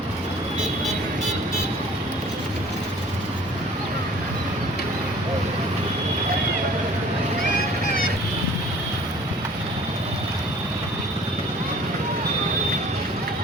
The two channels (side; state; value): both; normal; correlation 0.50